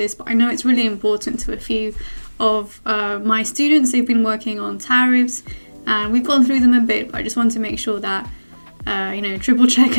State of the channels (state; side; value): inverted; both; correlation -1.00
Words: but I know it's really important to a few of my students. They've been working on tariffs and we've gone through them a bit, but I just want to make sure that, triple